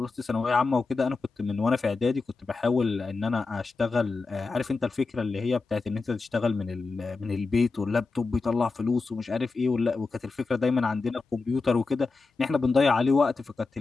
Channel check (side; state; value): right; quieter; 4.0 dB